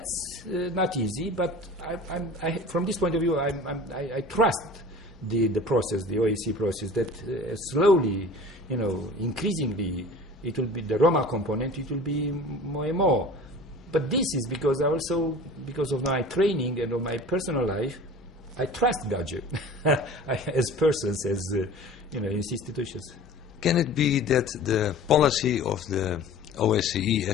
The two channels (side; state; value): both; normal; correlation 0.41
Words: not easy, but from this point of view, I trust the process, the OSCE process, that slowly, increasingly, it will be the Roma component, it will be more and more. But this is because because of my training and of my personal life, I trust gadjo as persons, as institutions. Can it be that the policy of the OSCE